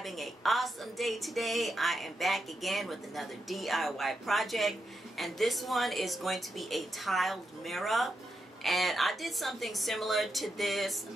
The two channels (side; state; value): both; normal; correlation 0.85